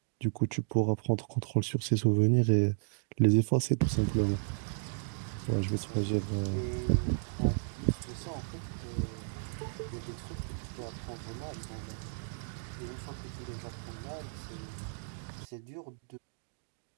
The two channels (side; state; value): left; silent; digital silence